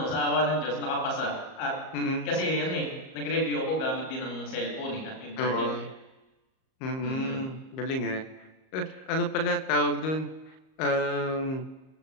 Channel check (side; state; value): right; late; 38 ms